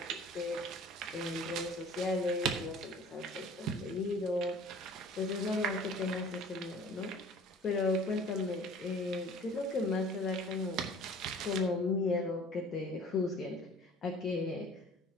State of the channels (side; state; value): both; normal; correlation 0.47